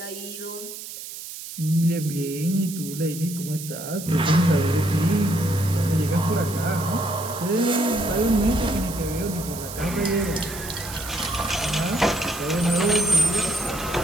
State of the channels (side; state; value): right; noise; hiss, 11 dB below the sound